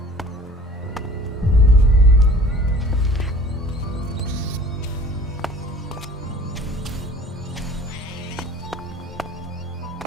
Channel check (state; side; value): normal; both; correlation 0.48